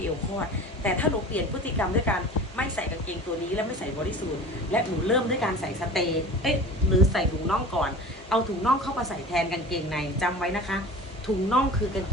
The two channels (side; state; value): both; normal; correlation 0.38